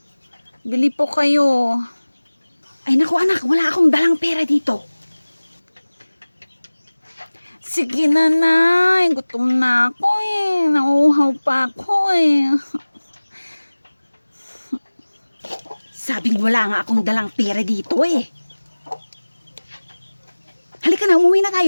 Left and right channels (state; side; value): inverted; both; correlation -1.00